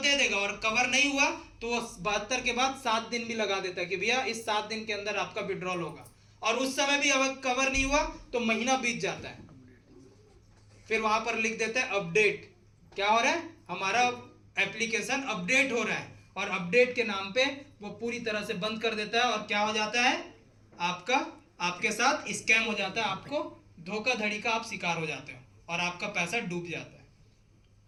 देगा, और कवर नहीं हुआ तो वो 72 के बाद 7 दिन भी लगा देता है कि भैया इस 7 दिन के अंदर आपका विड्रॉल होगा। और उस समय भी अगर कवर नहीं हुआ तो महीना बीत जाता है, फिर वहां पर लिख देता है अपडेट। क्या हो रहा है, हमारा एप्लीकेशन अपडेट हो रहा है, और अपडेट के नाम पे वो पूरी तरह से बंद कर देता है। और क्या हो जाता है, आपका आपके साथ स्कैम हो जाता है, आपको धोखाधड़ी का आप शिकार हो जाते हो और आपका पैसा डूब जाता है।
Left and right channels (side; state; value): both; identical; correlation 1.00